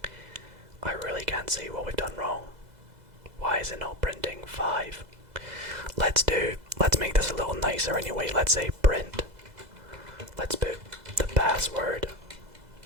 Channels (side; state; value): left; late; 2.0 ms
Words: I really can't see what we've done wrong. Why is it not printing 5? Let's make this a little nicer anyway. Let's say print. Let's put the password.